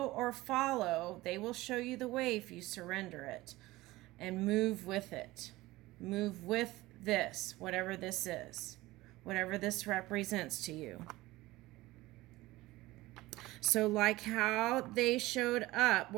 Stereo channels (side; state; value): left; quieter; 18.8 dB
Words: or follow. They will show you the way if you surrender it and move with it. Move with this, whatever this is, whatever this represents to you. So like how they showed up,